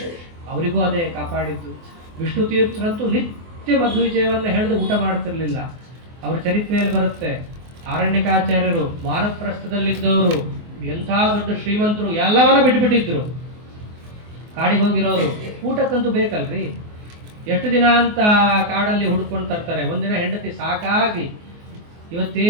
ಅವರಿಗೂ ಅದೇ ಕಾಪಾಡಿದ್ದು. ವಿಷ್ಣು ತೀರ್ಥರಂತೂ ನಿತ್ಯ ಮಧ್ವ ವಿಜಯವನ್ನ ಹೇಳಿದು ಊಟ ಮಾಡ್ತಿರ್ಲಿಲ್ಲ. ಅವ್ರ ಚರಿತ್ರೆಯಲ್ಲಿ ಬರುತ್ತೆ. ಆರಣ್ಯಕಾಚಾರ್ಯರು ವಾನಪ್ರಸ್ಥದಲ್ಲಿದ್ದವರು, ಎಂಥ ದೊಡ್ಡ ಶ್ರೀಮಂತರು, ಎಲ್ಲವನ್ನ ಬಿಟ್ಬಿಟ್ಟಿದ್ರು. ಕಾಡಿಗೆ ಹೋಗಿರೋರು ಊಟಕ್ಕಂತೂ ಬೇಕಲ್ರಿ. ಎಷ್ಟು ದಿನ ಅಂತ ಕಾಡಲ್ಲಿ ಹುಡ್ಕೊಂಡು ತರ್ತಾರೆ. ಒಂದಿನ ಹೆಂಡತಿ ಸಾಕಾಗಿ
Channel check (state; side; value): late; left; 24 ms